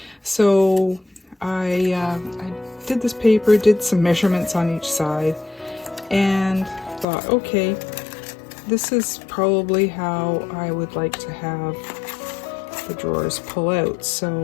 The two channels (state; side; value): drops out; right; at 7.1 s